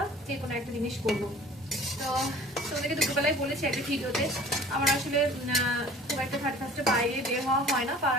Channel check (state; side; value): normal; both; correlation 0.46